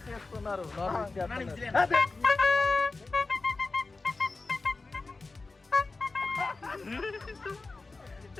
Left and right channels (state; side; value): quieter; right; 3.7 dB